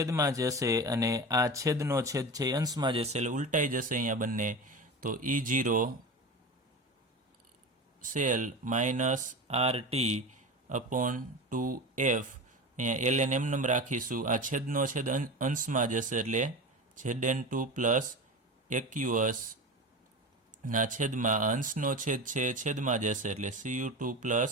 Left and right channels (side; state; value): both; normal; correlation 0.27